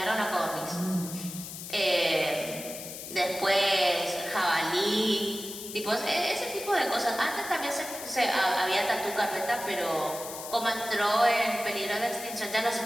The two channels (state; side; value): noise; left; hiss, 10 dB below the sound